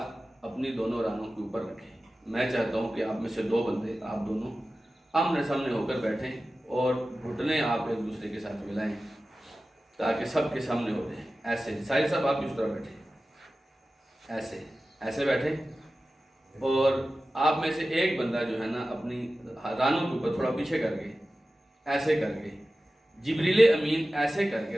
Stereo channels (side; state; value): both; normal; correlation 0.95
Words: اپنی دونوں رانوں کے اوپر رکھے۔ میں چاہتا ہوں کہ آپ میں سے 2 بندے، آپ دونوں آمنے سامنے ہو کر بیٹھیں اور گھٹنے آپ ایک دوسرے کے ساتھ ملائیں تاکہ سب کے سامنے ہو جائیں۔ ایسے سارے سب آپ اس طرح بیٹھیں، ایسے بیٹھے، اور آپ میں سے ایک بندہ جو ہے نا اپنی رانوں کے اوپر تھوڑا پیچھے کر کے، ایسے کر کے، جبریل امین ایسے کر کے